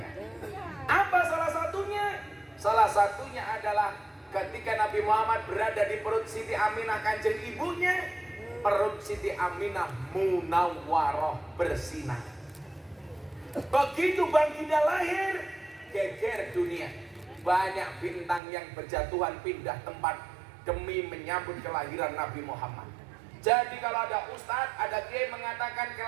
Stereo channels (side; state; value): left; drops out; at 18.4 s